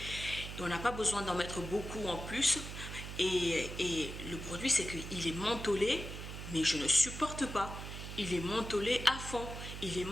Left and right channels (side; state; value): right; noise; hum, 8 dB below the sound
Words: Et on n'a pas besoin d'en mettre beaucoup en plus. Et le produit, c'est qu'il est mentholé, mais je ne supporte pas. Il est mentholé à fond. Il est